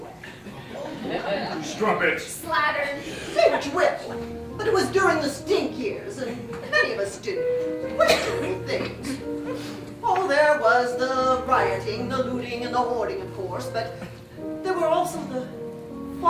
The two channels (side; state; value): both; identical; correlation 1.00